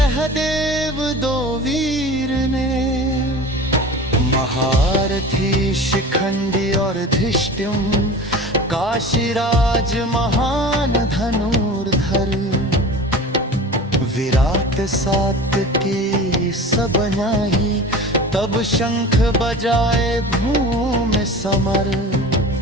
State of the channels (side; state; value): both; normal; correlation 0.37